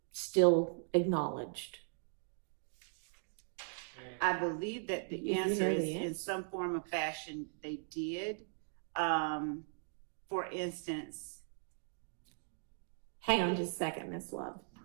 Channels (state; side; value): silent; left; digital silence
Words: still acknowledged? I believe that the answer is in some form or fashion they did. For instance, hang on just a second, Miss Love.